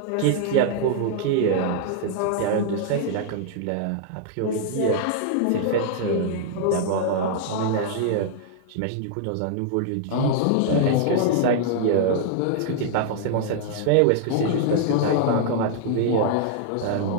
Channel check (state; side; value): different; both; correlation -0.01